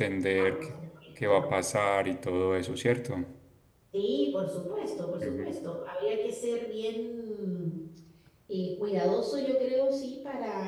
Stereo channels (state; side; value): identical; both; correlation 1.00